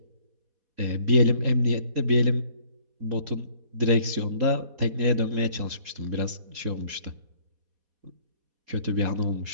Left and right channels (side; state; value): left; late; 4.1 ms